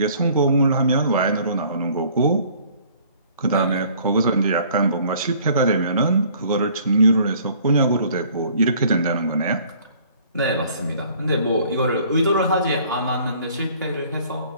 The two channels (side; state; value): both; inverted; correlation -0.55